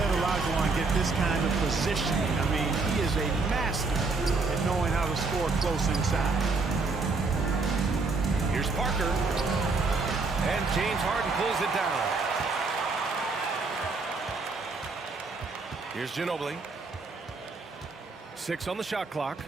Olajuwon get this kind of positioning. I mean, he is a master at knowing how to score close inside. Here's Parker. And James Harden pulls it down. Here's Ginobili. 6 on the shot clock.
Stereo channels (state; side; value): quieter; left; 4.0 dB